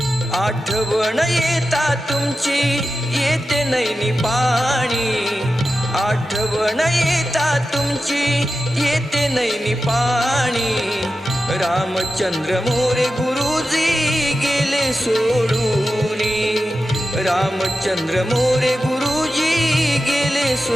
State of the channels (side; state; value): both; normal; correlation 0.92